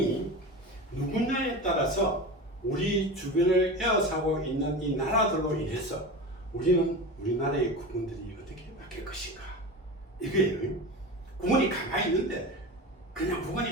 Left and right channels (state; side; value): normal; both; correlation 0.28